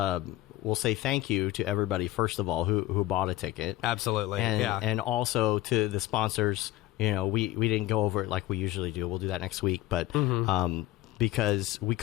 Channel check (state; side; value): quieter; right; 15.9 dB